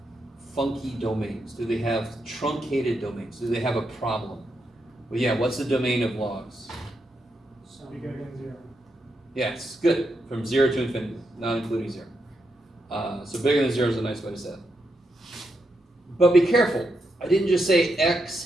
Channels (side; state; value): both; normal; correlation 0.83